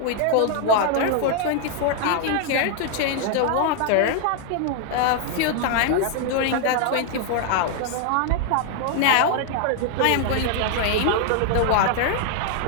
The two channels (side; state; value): both; different; correlation 0.00